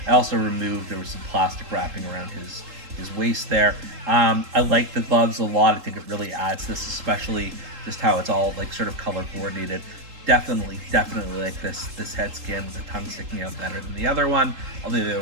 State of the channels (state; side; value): late; left; 3.8 ms